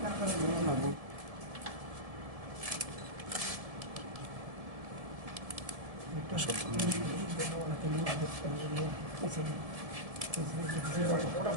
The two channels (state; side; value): late; left; 1.7 ms